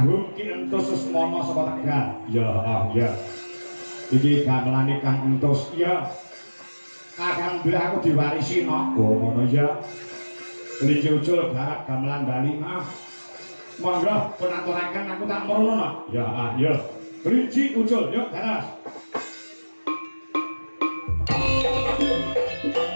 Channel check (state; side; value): inverted; both; correlation -1.00